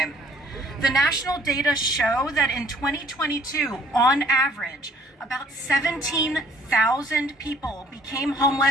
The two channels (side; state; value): both; normal; correlation 0.59